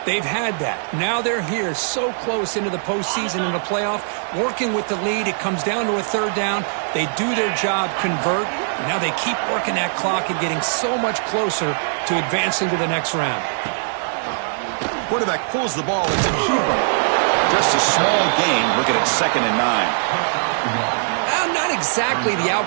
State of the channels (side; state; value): left; silent; 57 dB below the other